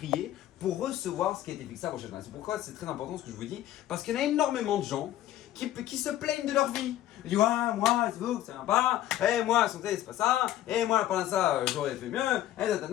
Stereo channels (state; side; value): quieter; right; 13.3 dB